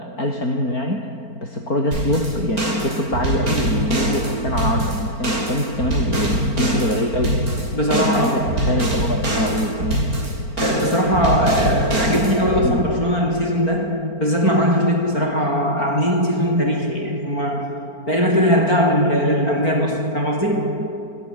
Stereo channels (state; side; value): late; right; 4.4 ms